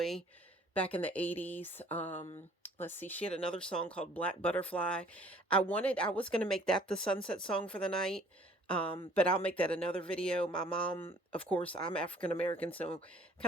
back in the 80s. Let's see, she had another song called Black Butterfly. I was going to make that the sunset song for the night. But I'll make that another video. My mom, of course, I'm African American, so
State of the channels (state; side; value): normal; both; correlation 0.55